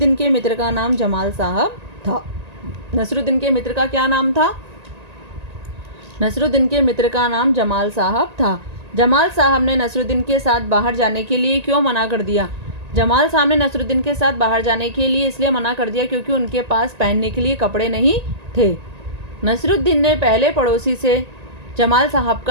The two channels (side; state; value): left; late; 1.9 ms